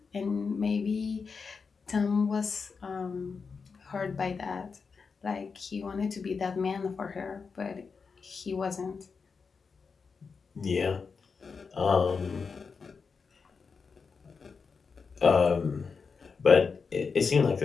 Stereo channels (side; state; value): right; quieter; 5.2 dB